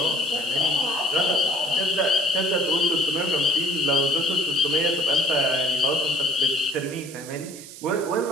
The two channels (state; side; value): noise; right; hiss, 15 dB below the sound